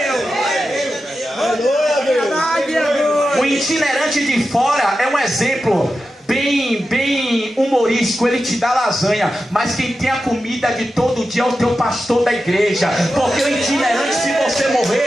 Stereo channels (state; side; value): normal; both; correlation 0.91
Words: O itinerante de fora é um exemplo bem humorístico. Ele te dá lasanha, mas quem tem a comida de todo dia é o teu pastor da igreja. Porque o itinerante, se você